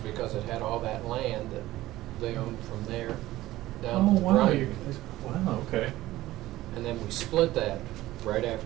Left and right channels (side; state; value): left; quieter; 16.3 dB